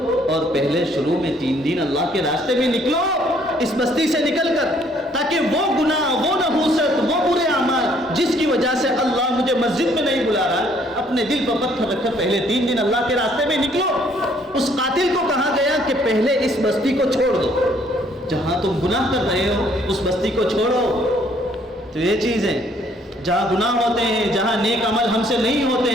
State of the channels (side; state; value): both; normal; correlation 0.63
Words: اور پہلے شروع میں 3 دن اللہ کے راستے میں نکلو اس بستی سے نکل کر، تاکہ وہ گناہ، وہ نحوست، وہ برے اعمال جس کی وجہ سے اللہ مجھے مسجد میں نہیں بلا رہا، اپنے دل پر پتھر رکھ کر پہلے 3 دن اللہ کے راستے میں نکلو۔ اس قاتل کو کہا گیا کہ پہلے اس بستی کو چھوڑ دو، جہاں تم گناہ کر رہے ہو اس بستی کو چھوڑو۔ تو یہ چیز ہے، جہاں گناہ ہوتے ہیں، جہاں نیک عمل ہم سے نہیں ہوتے